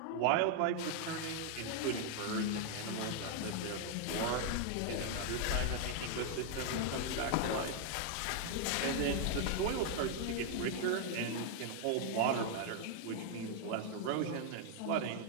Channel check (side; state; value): both; different; correlation 0.00